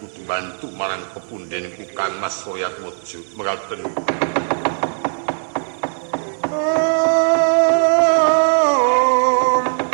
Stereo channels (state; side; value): silent; left; digital silence